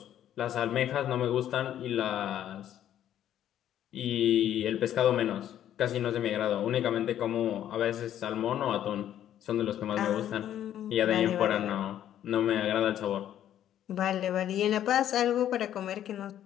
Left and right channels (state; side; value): quieter; right; 11.1 dB